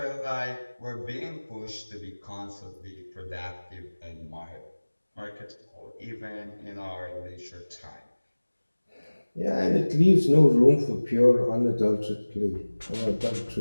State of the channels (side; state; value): both; inverted; correlation -1.00